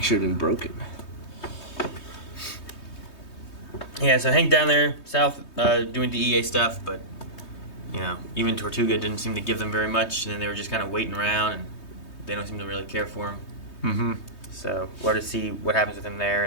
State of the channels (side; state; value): right; late; 3.2 ms